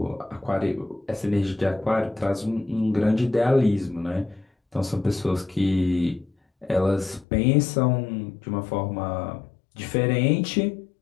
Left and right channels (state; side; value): drops out; right; at 7.2 s